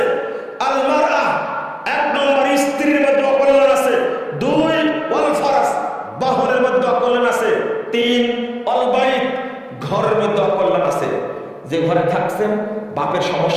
আল মারআ, এক নম্বর স্ত্রীর মধ্যে অকল্যাণ আছে। দুই, ওয়াল ফারাস, বাহনের মধ্যে অকল্যাণ আছে। তিন, আল বাইত, ঘরের মধ্যে অকল্যাণ আছে। যে ঘরে থাকছেন বাপের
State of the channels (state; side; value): identical; both; correlation 1.00